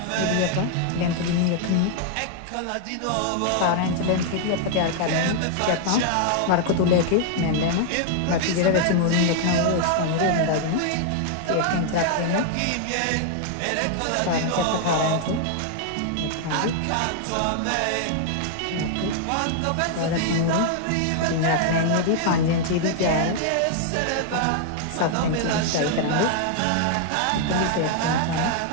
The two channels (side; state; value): both; different; correlation 0.00